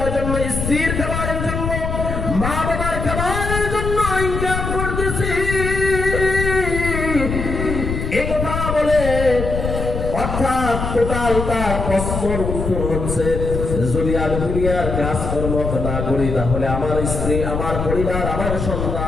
জন্য, স্ত্রীর খাবারের জন্য, মা বাবার খাবারের জন্য ইনকাম করতেছি। এই কথা বলে অর্থাৎ টোটাল তার প্রশ্নের উত্তর হচ্ছে, যদি আমি দুনিয়ার কাজকর্ম না করি, তাহলে আমার স্ত্রী, আমার পরিবার, আমার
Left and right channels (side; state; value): left; noise; rumble, 3 dB below the sound